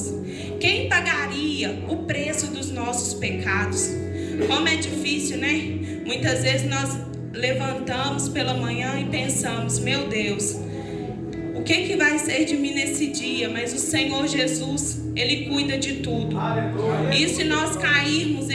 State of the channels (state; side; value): identical; both; correlation 1.00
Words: Quem pagaria o preço dos nossos pecados? Como é difícil, né? Muitas vezes nós levantamos pela manhã e pensamos: meu Deus, o que vai ser de mim nesse dia? Mas o Senhor Jesus, Ele cuida de tudo. E se nós cairmos,